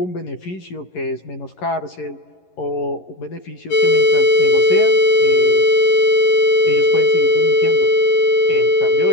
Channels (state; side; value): late; right; 11 ms